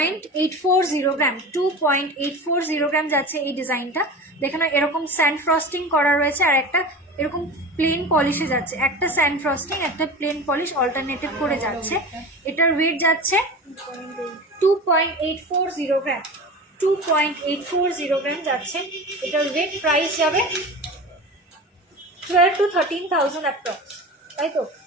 গ্রাম, 2.840 গ্রাম যাচ্ছে এই ডিজাইনটা। দেখে না, এরকম স্যান্ড ফ্রস্টিং করা রয়েছে আর একটা এরকম প্লেন পলিশে যাচ্ছে, একটা স্যান্ড ফ্রস্টিং একটা প্লেন পলিশ অল্টারনেটিভ করে যাচ্ছে। এটার ওয়েট যাচ্ছে 2.840 গ্রাম, 2.840 গ্রাম যাচ্ছে এটার ওয়েট। প্রাইস যাবে 12 to 13,000 অ্যাপ্রক্স, তাই তো?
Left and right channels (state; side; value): normal; both; correlation 0.31